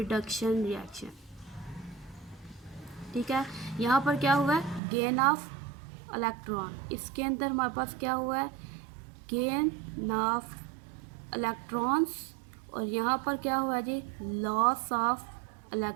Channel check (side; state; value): left; drops out; at 4.8 s